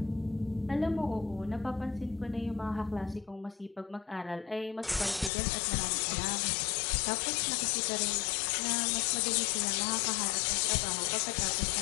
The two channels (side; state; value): right; drops out; at 5.3 s